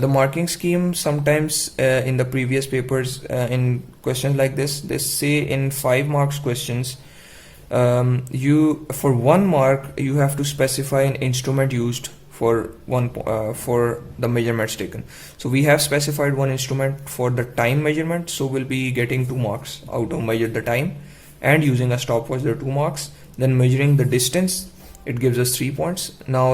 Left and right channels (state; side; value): identical; both; correlation 1.00